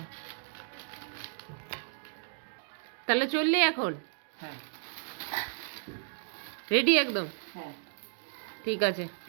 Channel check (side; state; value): left; silent; digital silence